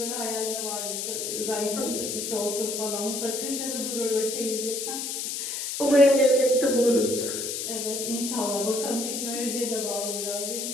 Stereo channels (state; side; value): noise; left; hiss, 3 dB below the sound